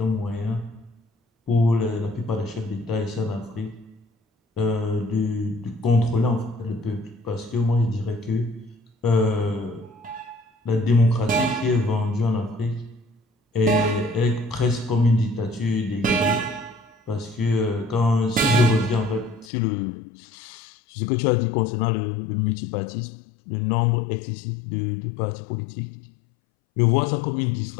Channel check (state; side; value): drops out; right; at 19.5 s